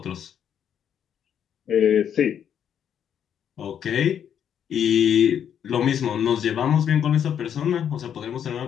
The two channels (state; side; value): quieter; right; 8.9 dB